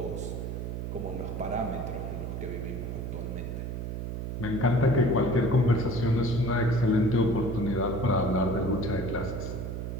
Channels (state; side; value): noise; right; hum, 5 dB below the sound